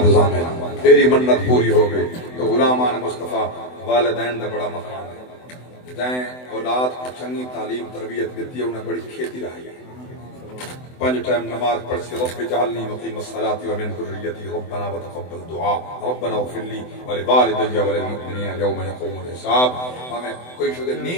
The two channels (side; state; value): right; late; 24 ms